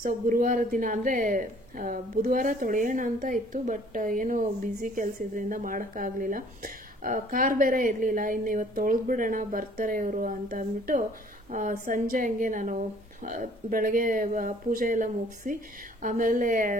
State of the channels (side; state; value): both; normal; correlation 0.57